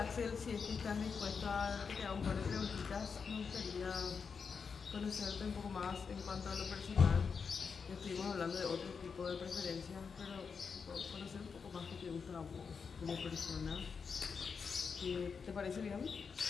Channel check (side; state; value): right; quieter; 5.7 dB